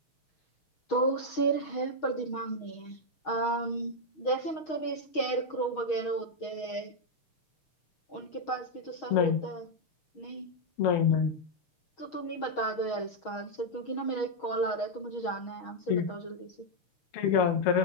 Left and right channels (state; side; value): late; right; 6.3 ms